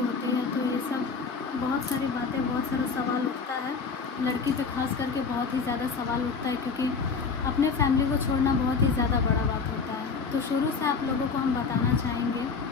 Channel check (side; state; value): right; quieter; 5.1 dB